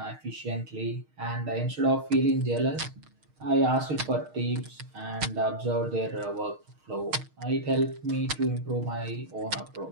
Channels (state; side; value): late; left; 6.5 ms